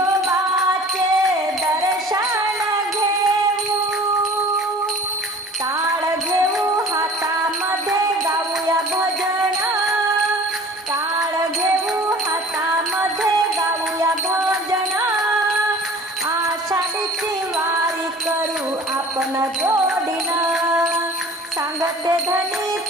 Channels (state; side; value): normal; both; correlation 0.45